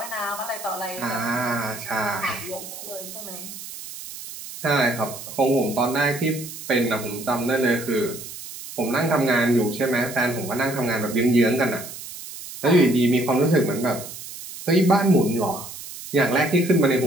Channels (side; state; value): right; noise; hiss, 12 dB below the sound